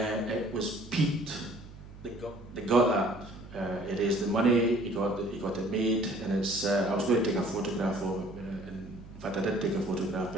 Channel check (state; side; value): noise; right; hum, 17 dB below the sound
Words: was Pete that got that. He raised the money, he got it made, and it's. I was going to take a photograph of it, and in fact I did take a photograph,